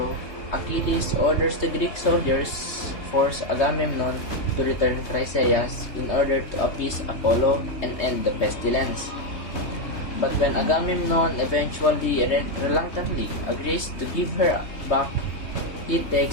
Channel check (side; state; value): right; late; 3.3 ms